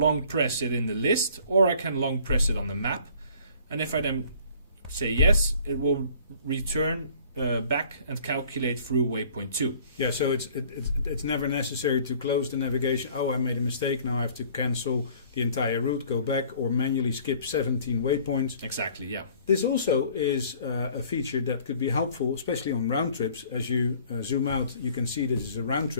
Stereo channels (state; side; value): inverted; both; correlation -0.54